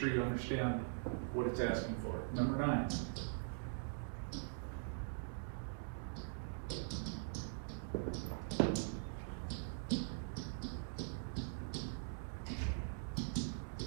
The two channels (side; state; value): left; silent; digital silence